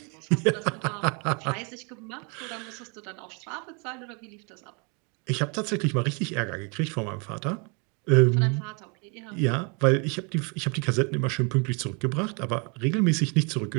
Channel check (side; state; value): left; quieter; 33.5 dB